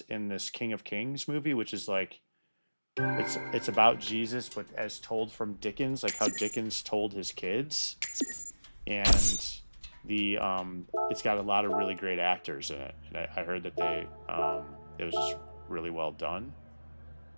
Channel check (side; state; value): both; inverted; correlation -1.00